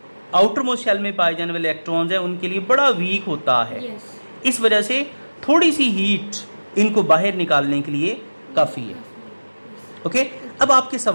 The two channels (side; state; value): both; inverted; correlation -1.00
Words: आउटर मोस्ट शेल में पाए जाने वाले इलेक्ट्रॉन्स हैं उनके लिए बड़ा वीक होता है. Yes. इस वजह से थोड़ी सी हीट इनको बाहर निकालने के लिए काफ़ी है. ओके. अब आपके